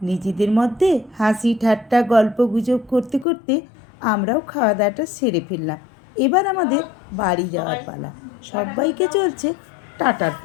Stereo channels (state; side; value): drops out; right; at 3.2 s